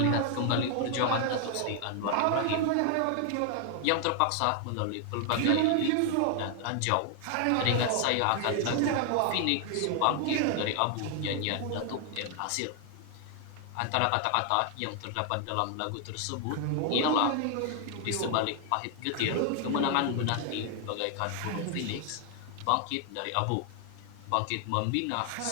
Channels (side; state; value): both; different; correlation 0.00